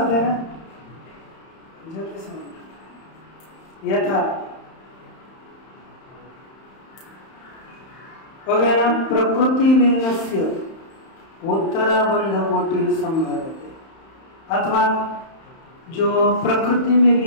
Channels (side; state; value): right; late; 31 ms